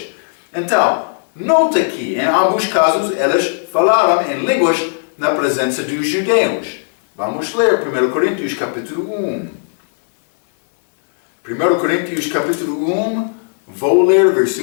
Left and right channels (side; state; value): right; silent; digital silence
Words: Então, nota que em ambos casos eles falaram em línguas na presença dos judeus. Vamos ler 1 Coríntios capítulo 1. 1 Coríntios capítulo 1, vou ler